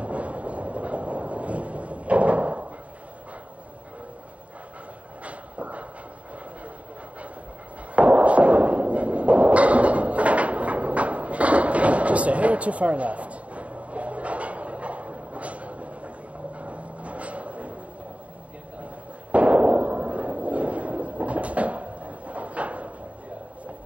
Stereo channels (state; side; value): late; left; 0.066 ms